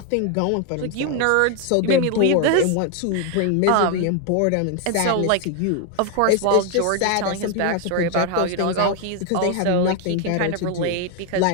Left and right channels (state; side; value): different; both; correlation 0.01